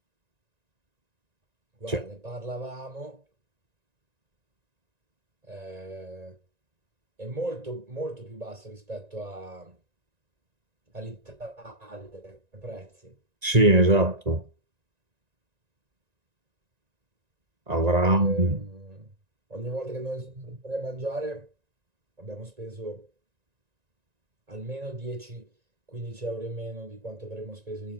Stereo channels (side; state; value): left; late; 1.9 ms